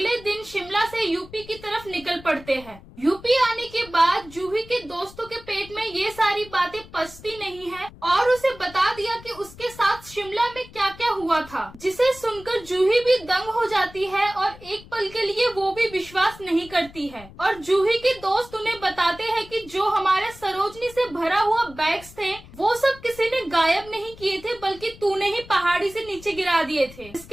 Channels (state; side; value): noise; left; rumble, 19 dB below the sound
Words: दिन शिमला से यूपी की तरफ निकल पड़ते हैं। यूपी आने के बाद जूही के दोस्तों के पेट में ये सारी बातें पचती नहीं है और उसे बता दिया कि उसके साथ शिमला में क्या क्या हुआ था, जिसे सुनकर जूही भी दंग हो जाती है और एक पल के लिए वो भी विश्वास नहीं करती है। और जूही के दोस्त उन्हें बताते हैं कि जो हमारे सरोजनी से भरा हुआ बैग्स थे वो सब किसी ने गायब नहीं किए थे, बल्कि तूने ही पहाड़ी से नीचे गिरा दिए थे।